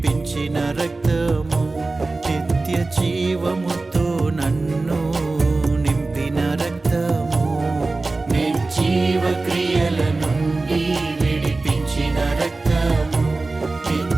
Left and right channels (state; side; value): quieter; left; 3.4 dB